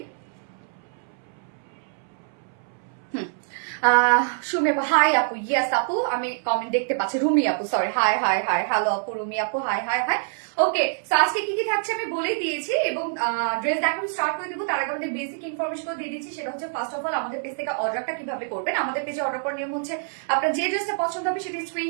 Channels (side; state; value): left; silent; 61 dB below the other